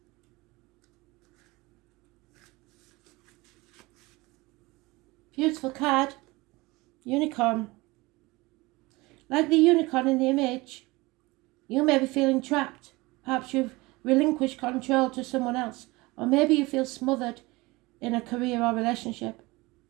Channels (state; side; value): quieter; left; 22.3 dB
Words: Beautiful card. Unicorn. Like the unicorn in the image, you may be feeling trapped. Perhaps you've relinquished control to someone else. Or maybe you feel smothered in a career or relationship.